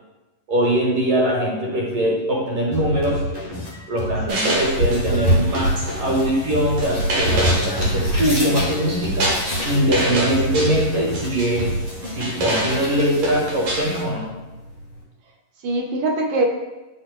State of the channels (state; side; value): late; left; 11 ms